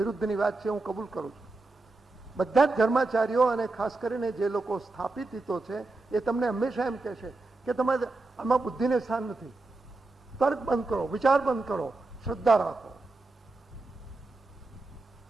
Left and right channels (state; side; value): quieter; left; 3.2 dB